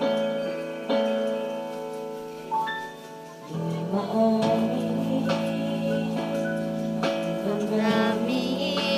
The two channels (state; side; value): identical; both; correlation 1.00